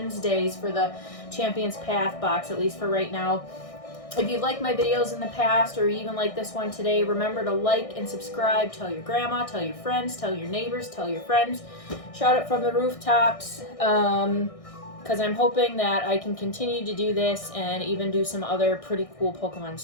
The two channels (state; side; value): late; right; 1.6 ms